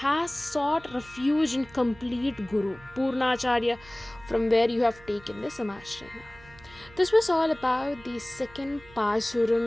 sought refuge in complete Guru, Purnacharya, from where you have taken the Samashrayana. This was all about the second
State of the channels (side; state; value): right; noise; hum, 23 dB below the sound